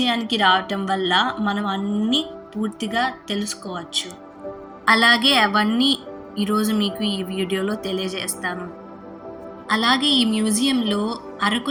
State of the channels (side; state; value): both; identical; correlation 1.00